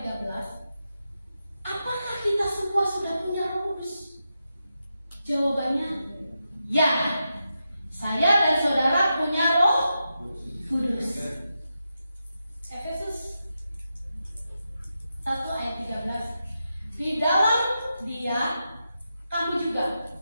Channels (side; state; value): both; inverted; correlation -0.88